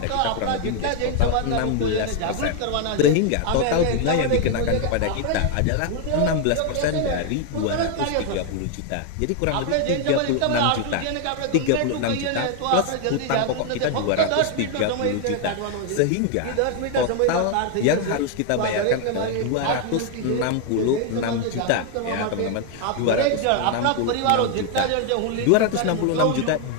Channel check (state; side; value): different; both; correlation 0.01